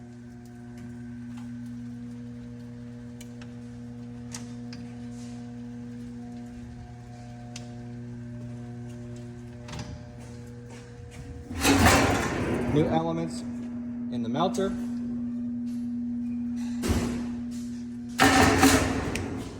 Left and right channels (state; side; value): identical; both; correlation 1.00